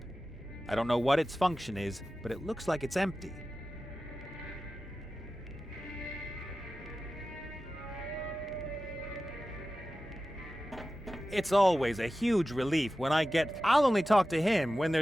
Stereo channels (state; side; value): normal; both; correlation 0.95